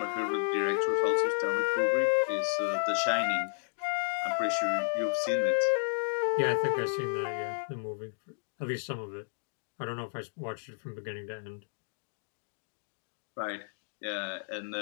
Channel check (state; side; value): silent; right; digital silence